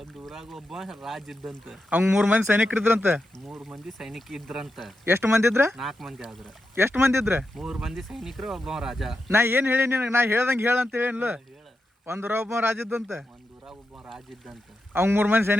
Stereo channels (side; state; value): both; normal; correlation 0.88